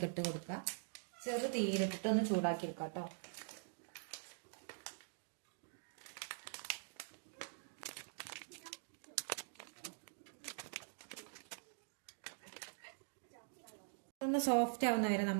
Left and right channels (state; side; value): silent; left; digital silence